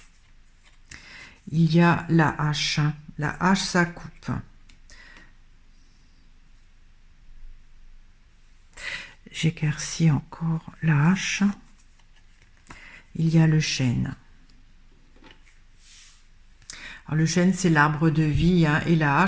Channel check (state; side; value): identical; both; correlation 1.00